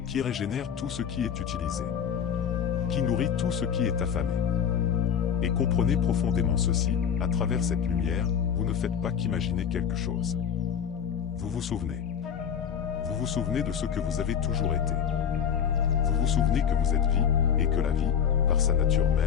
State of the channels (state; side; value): quieter; right; 7.9 dB